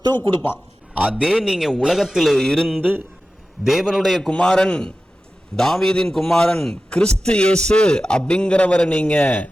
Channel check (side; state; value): both; normal; correlation 0.94